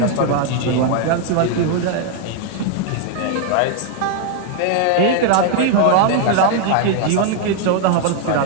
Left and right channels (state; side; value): different; both; correlation 0.00